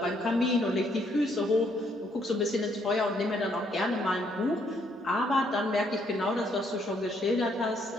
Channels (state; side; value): normal; both; correlation 0.70